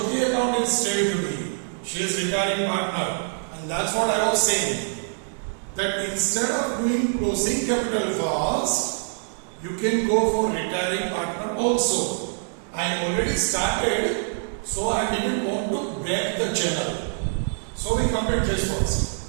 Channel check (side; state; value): left; silent; digital silence